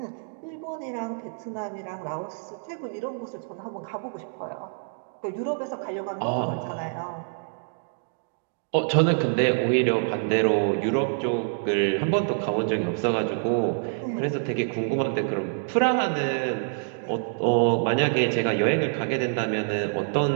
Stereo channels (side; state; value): left; silent; digital silence